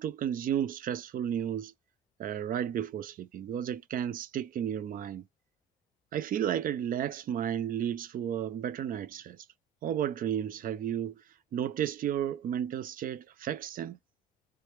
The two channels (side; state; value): left; quieter; 9.5 dB